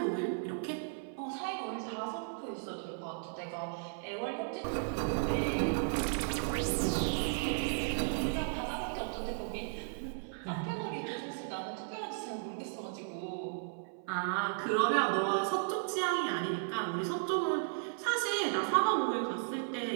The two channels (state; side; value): silent; left; 54 dB below the other